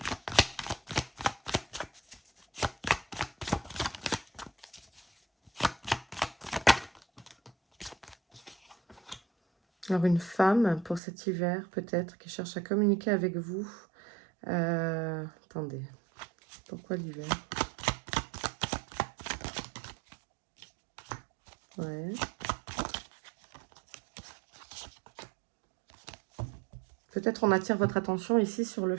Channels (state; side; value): drops out; left; at 11.0 s